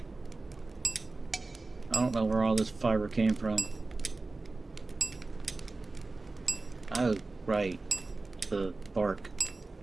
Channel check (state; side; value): quieter; left; 3.4 dB